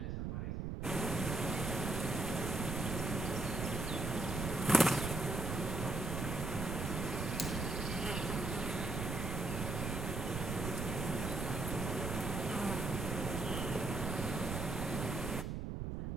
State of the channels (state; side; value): noise; right; rumble, 2 dB below the sound